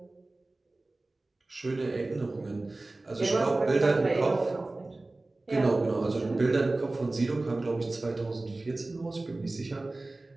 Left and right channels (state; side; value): quieter; left; 3.0 dB